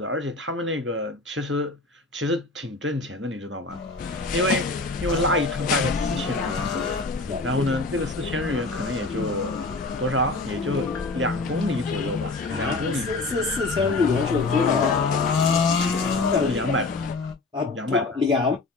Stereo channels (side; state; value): right; quieter; 3.4 dB